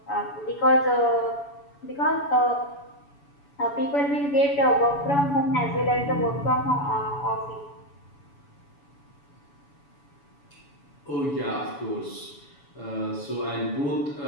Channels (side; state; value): right; late; 7.0 ms